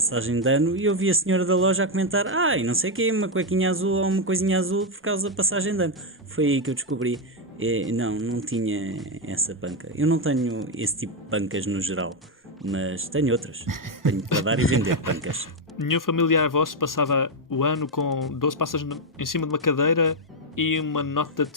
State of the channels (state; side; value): normal; both; correlation 0.03